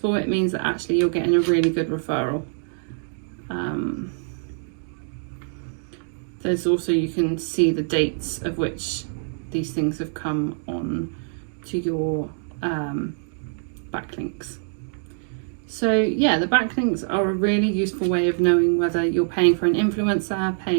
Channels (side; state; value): left; silent; 62 dB below the other